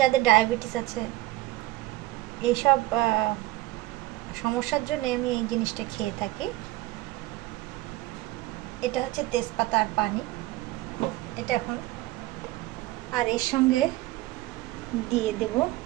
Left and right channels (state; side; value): quieter; left; 18.5 dB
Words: যাদের ডায়াবেটিস আছে, এইসব সমস্যার জন্য আমি এই জিনিসটা খেয়ে থাকি। এটা হচ্ছে তেজপাতা আর পানি, এটা এখন। আর এর সঙ্গে দিয়ে দেব